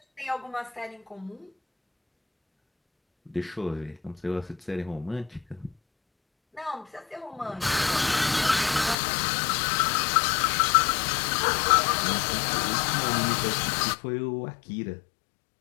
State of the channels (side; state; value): right; drops out; at 9.0 s